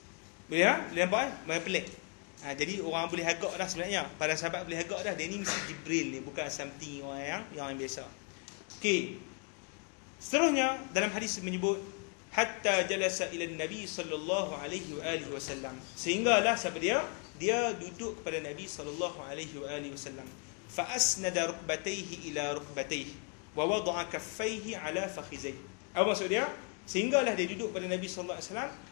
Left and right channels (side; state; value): right; quieter; 35.5 dB